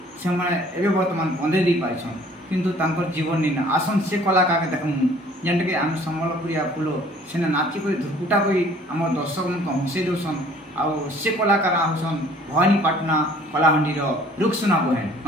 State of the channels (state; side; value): normal; both; correlation 0.54